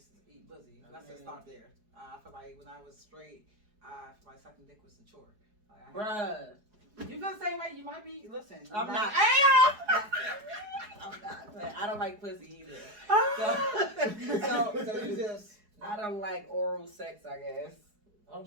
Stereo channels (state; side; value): late; left; 4.8 ms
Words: eat pussy. Let's just start there. I feel like when I was straight, I feel like sucking dick was a chore. Like, Bruh. You feel the same way? You might be. Listen. I'm not. I'm not. But I don't like pussy either. So you just. I don't like oral sex, I guess. Oh,